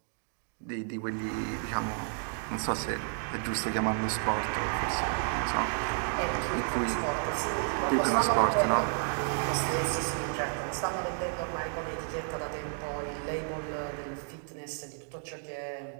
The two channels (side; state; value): left; silent; 57 dB below the other